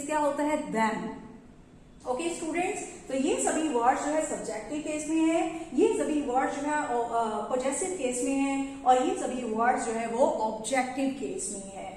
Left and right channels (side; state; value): both; identical; correlation 1.00